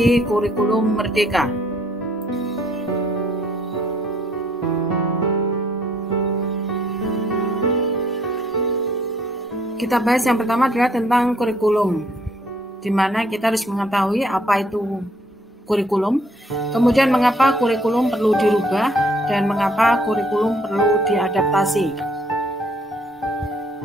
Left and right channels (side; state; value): both; normal; correlation 0.65